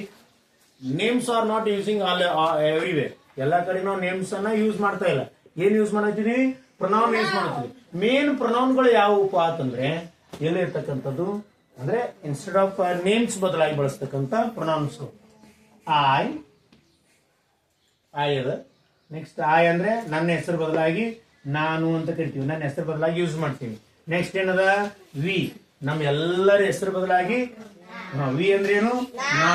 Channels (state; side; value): identical; both; correlation 1.00